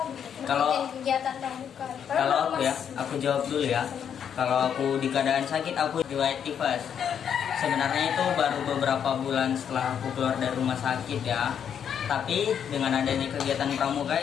gitu? Kalau Bikin kegiatan pramuka. Kalau aku ya, aku jawab dulu ya. Kalau aku di keadaan sakit, aku riwayat tifus. Sebenarnya itu baru beberapa bulan setelah aku keluar dari rumah sakit ya. Tapi dengan adanya kegiatan pramuka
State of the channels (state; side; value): quieter; right; 8.3 dB